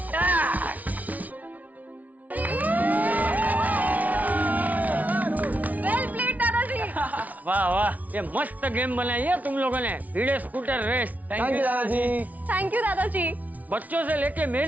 वाह वाह, ये मस्त गेम बनाई है तुम लोगों ने, भिड़े स्कूटर रेस। थैंक यू दादाजी। थैंक यू दादाजी। बच्चों से लेके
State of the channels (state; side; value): late; left; 0.073 ms